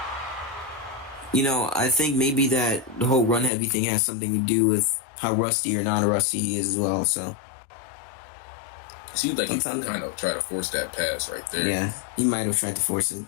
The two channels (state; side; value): drops out; right; at 3.5 s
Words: You know, I think maybe that the whole run heavy thing has something to do with how rusty or non-rusty he is as well. So it seems like he kind of tried to force that pass right there. Yeah, he might have tried to force it.